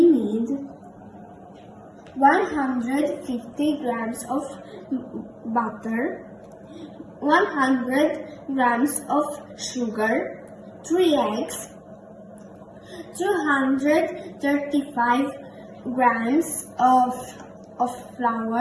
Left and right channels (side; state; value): both; identical; correlation 1.00